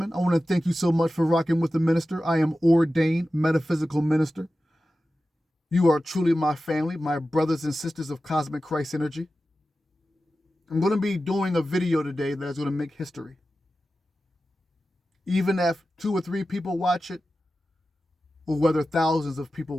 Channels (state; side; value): normal; both; correlation 0.94